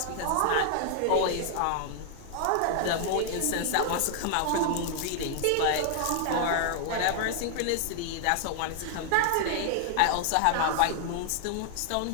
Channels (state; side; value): different; both; correlation 0.00